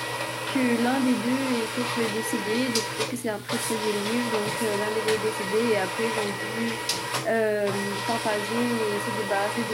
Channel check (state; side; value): identical; both; correlation 1.00